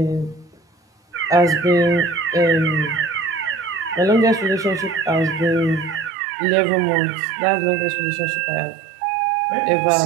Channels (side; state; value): left; drops out; at 6.1 s